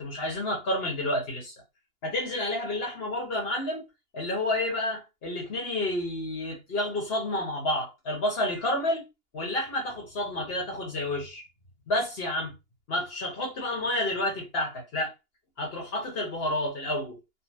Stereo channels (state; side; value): late; right; 2.8 ms